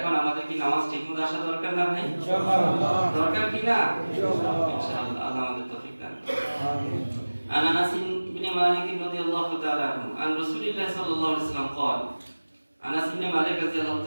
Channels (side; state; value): both; inverted; correlation -1.00